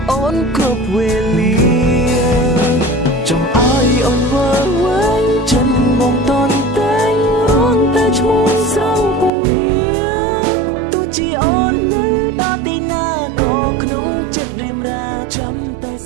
អូនគ្រប់វេលាចង់ឲ្យអូនវល់វែងចិនបងតន់តែងរងតែឈ្មោះស្រង់ពងងារទោះជាអូននៅដល់ទីណាក៏ក្នុងចិត្តរៀមរាចាំតែ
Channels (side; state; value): left; drops out; at 9.3 s